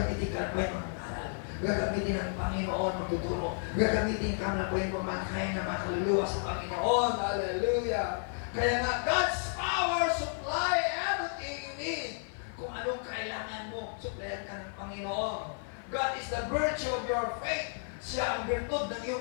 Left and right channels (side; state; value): right; silent; 56 dB below the other